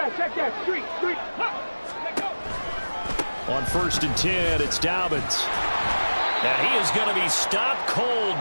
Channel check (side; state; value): both; inverted; correlation -1.00